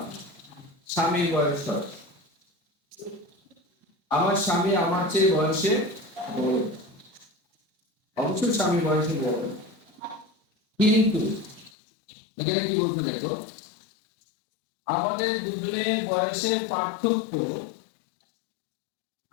স্বামীর বয়স বাড়ে। আমার স্বামী আমার চেয়ে বয়সে বড়, অবশ্যই স্বামী বয়সে বড়, কিন্তু এখানে কি বলতে দেখো, আমাদের দুজনের বয়সের পার্থক্য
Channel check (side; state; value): right; drops out; at 11.7 s